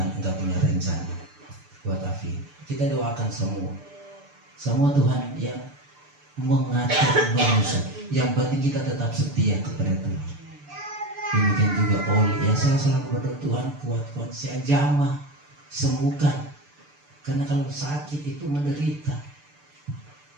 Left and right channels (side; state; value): left; late; 6.8 ms